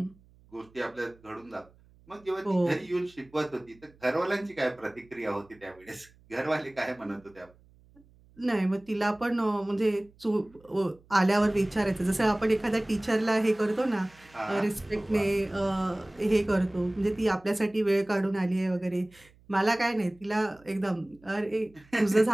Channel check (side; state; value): right; noise; hum, 28 dB below the sound